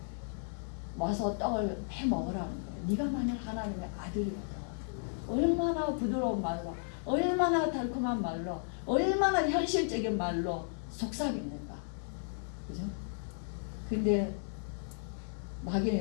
와서 떡을 해먹으라는 거예요. 네가 만약 하나님의 아들이었다. 얼마나 부드러운 말로, 얼마나 달콤한 말로, 얼마나 현실적인 말로 속삭입니까? 그죠? 근데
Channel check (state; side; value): silent; right; digital silence